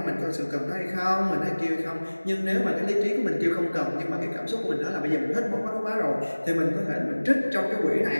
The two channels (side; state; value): both; inverted; correlation -1.00